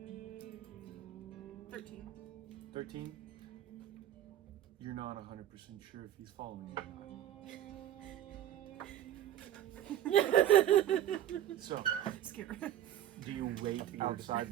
13. 13? You're not 100% sure if he's following you. So, Scared. do you wait outside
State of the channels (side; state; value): left; quieter; 11.6 dB